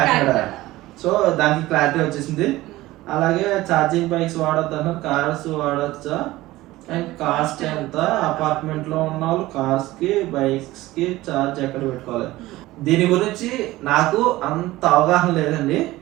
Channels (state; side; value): quieter; left; 17.7 dB